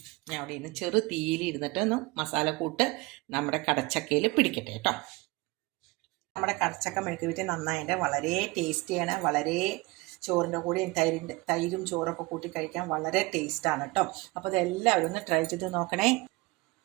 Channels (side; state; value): left; quieter; 23.2 dB